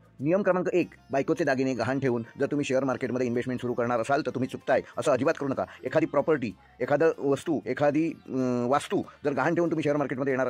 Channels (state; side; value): identical; both; correlation 1.00